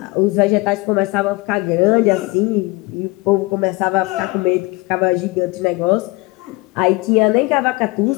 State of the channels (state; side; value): quieter; right; 23.8 dB